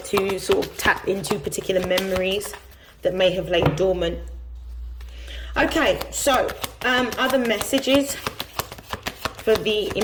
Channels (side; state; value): both; identical; correlation 1.00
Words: to sort of tap into particular memories that may have laid dormant. Okay, so other messages for the